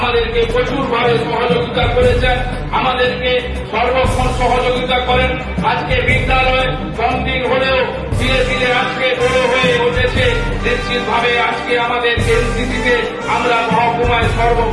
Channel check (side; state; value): both; identical; correlation 1.00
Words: প্রচুরভাবে সহযোগিতা করেছেন, আমাদেরকে সর্বক্ষণ সহযোগিতা করেন। আজকে বিদ্যালয় কম দিন হলেও ধীরে ধীরে আজকে বড় হয়ে উঠেছে। নিশ্চিতভাবে আজকে আমাদের এনসিসিতে আমরা মহকুমায়